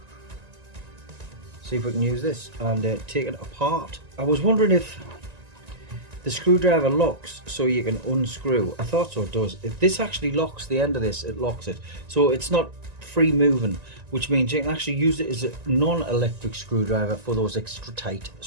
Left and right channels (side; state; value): left; late; 1.9 ms